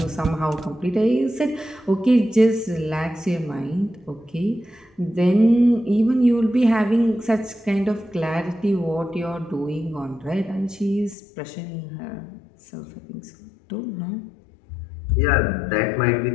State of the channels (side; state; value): right; drops out; at 11.2 s